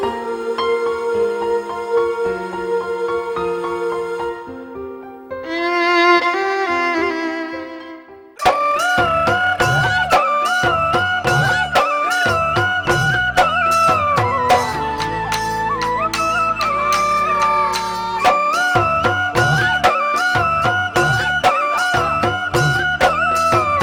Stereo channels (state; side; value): identical; both; correlation 1.00